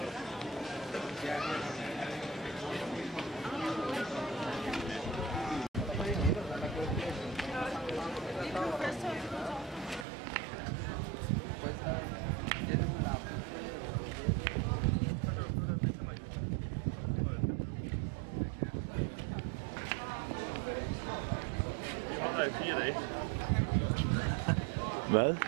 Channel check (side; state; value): left; drops out; at 10.1 s